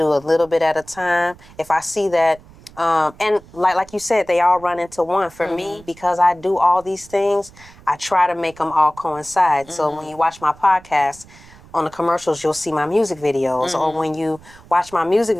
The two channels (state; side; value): noise; right; rumble, 23 dB below the sound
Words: a little bit at a time. If I see that, and like you said, they all run into one. For me, because I do all these things, I try to make them all coincide. So when you watch my podcast, on the commercials, you'll see my music videos. Or when you watch my music